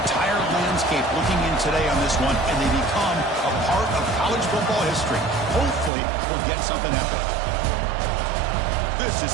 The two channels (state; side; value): drops out; left; at 5.9 s